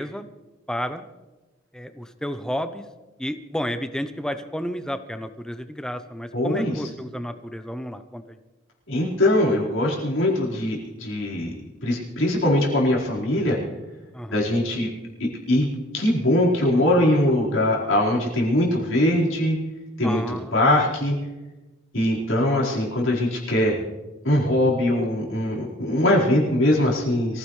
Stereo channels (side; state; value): both; normal; correlation 0.51